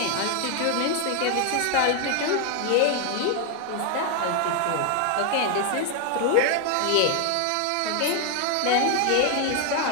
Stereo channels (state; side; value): different; both; correlation 0.00